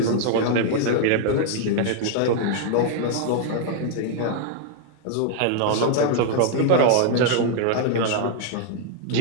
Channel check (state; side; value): different; both; correlation 0.00